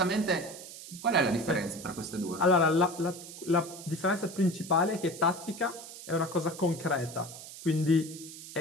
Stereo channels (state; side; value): noise; right; hiss, 14 dB below the sound